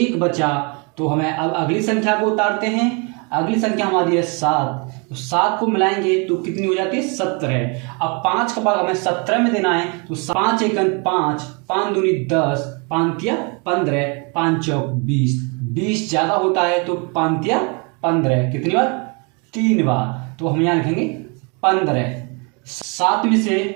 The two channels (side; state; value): left; quieter; 32.8 dB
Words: बचा, तो हमें अब अगली संख्या को उतारते हैं। अगली संख्या हमारी है 7, तो 7 को मिलाएंगे तो कितनी हो जाती है? 17। अब 5 का भाग हमें 17 में देना है, तो 5 एकन 5, 5 दूनी 10, 5 तिया 15, 5 चौक 20, 20 ज़्यादा होता है तो 5 तिया 15, कितनी बार? 3 बार, तो हम यहाँ लिखेंगे 15। 7 में से